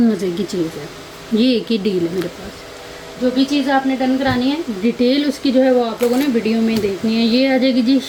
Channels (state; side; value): identical; both; correlation 1.00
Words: मज़े की चीज़ है। ये एक ही डील है मेरे पास। जो भी चीज़ आपने डन करानी है डिटेल उसकी जो है वो आप लोगों ने वीडियो में देखनी है। ये आ जाएगी जी